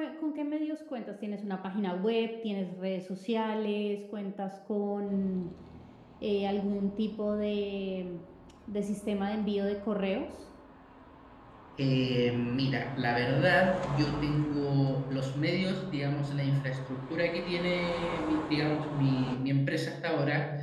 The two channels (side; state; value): both; identical; correlation 1.00